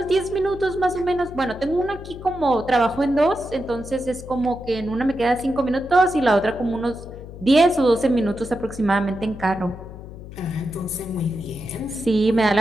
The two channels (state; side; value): noise; left; hum, 14 dB below the sound